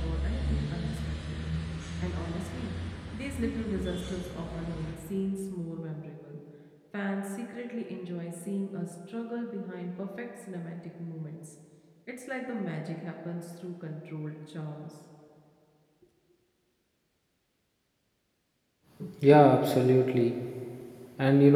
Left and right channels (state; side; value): identical; both; correlation 1.00